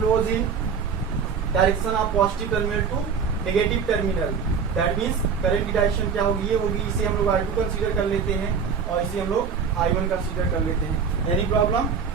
in direction of positive terminal to negative terminal. That means current की डायरेक्शन क्या होगी, ये होगी। इसे हम लोग I2 कंसीडर कर लेते हैं और इसे हम लोग I1 कंसीडर कर लेते हैं। Any problem?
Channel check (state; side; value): quieter; left; 6.2 dB